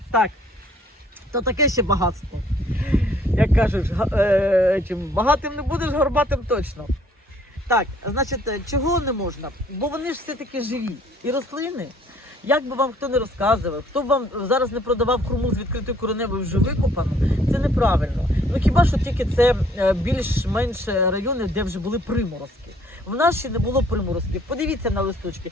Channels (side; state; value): both; normal; correlation 0.60